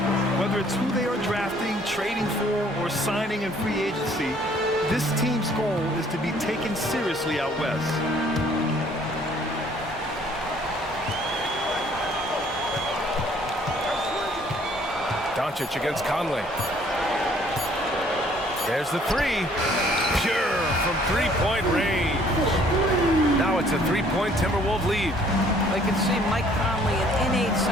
Whether it's who they are drafting, trading for, or signing in free agency, this team's goal is to be taken seriously out west. Doncic against Conley. There's the three. Pure from three-point range. Now it's a three-point Timberwolves lead. I can see Mike Conley an innate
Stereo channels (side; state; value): both; normal; correlation 0.60